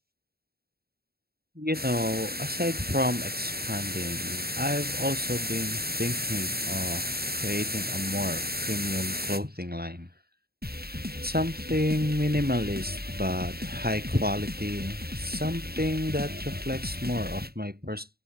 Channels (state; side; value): late; left; 0.45 ms